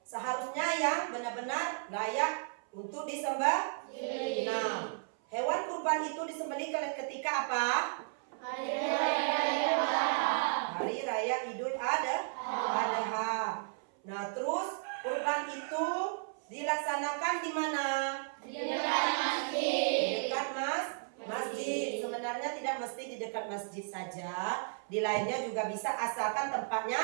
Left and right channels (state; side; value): silent; left; 55 dB below the other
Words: seharusnya yang benar-benar layak untuk disembah. Nah, hewan kurban itu disembelih ketika apa? Hari Raya Idul Adha. Nah, terus kurban itu dilaksanakan di mana? Di dekat masjid. Di dekat masjid. Sebenarnya tidak mesti di dekat masjid saja. Di lainnya juga bisa asalkan tempatnya